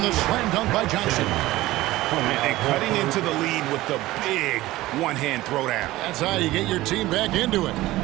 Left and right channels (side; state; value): left; quieter; 17.4 dB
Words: the slam dunk by Johnson. And cutting into the lead with the big one-hand throwdown. That's how you get your team back into it.